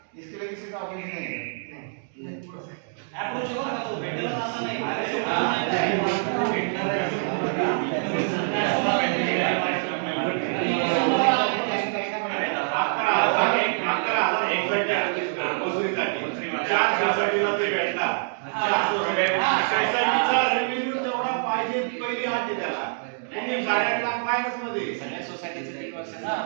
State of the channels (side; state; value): left; silent; digital silence